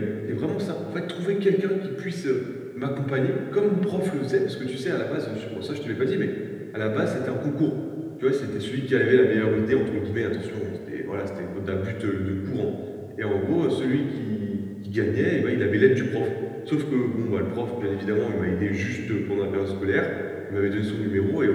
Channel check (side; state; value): both; identical; correlation 1.00